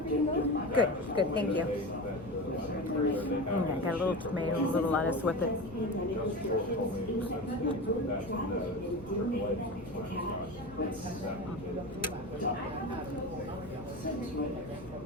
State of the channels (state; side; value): normal; both; correlation 0.27